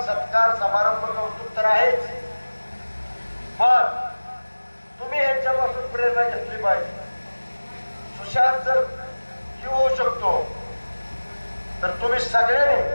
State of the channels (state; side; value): inverted; both; correlation -1.00